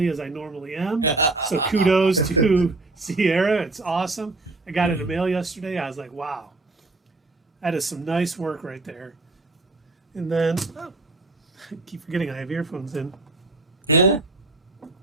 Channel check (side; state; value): left; quieter; 3.2 dB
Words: as I normally am. So kudos to Sierra. It's awesome. I got it in the mail yesterday. I was like, wow. That is some nice work right there. And then, I keep forgetting I have earphones in. Yeah. And